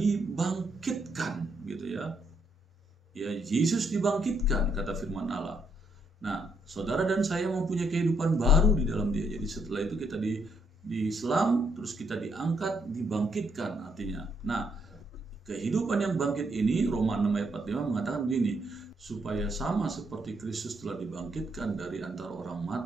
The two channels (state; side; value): normal; both; correlation 0.74